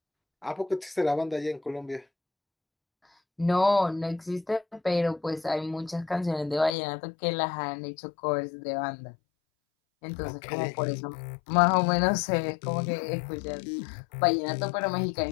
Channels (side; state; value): right; drops out; at 6.7 s